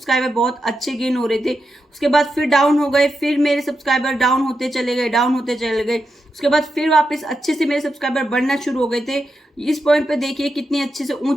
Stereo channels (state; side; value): normal; both; correlation 0.87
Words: बहुत अच्छे गेन हो रहे थे, उसके बाद फिर डाउन हो गए, फिर मेरे सब्सक्राइबर डाउन होते चले गए, उसके बाद फिर वापस अच्छे से मेरे सब्सक्राइबर बढ़ना शुरू हो गए थे। इस पॉइंट पे देखिए कितनी अच्छे से